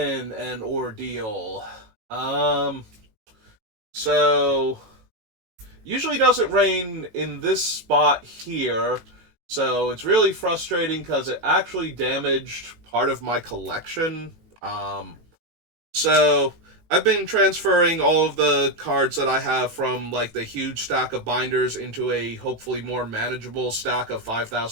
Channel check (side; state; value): left; late; 18 ms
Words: an ordeal. Um, so usually doesn't rain in this spot here, so it's really frustrating because it actually damaged part of my collection. So I've been transferring all of the cards that I have from like the huge stack of binders into a hopefully more manageable stack of